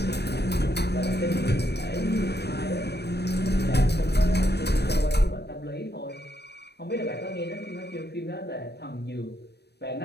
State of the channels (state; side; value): late; right; 0.48 ms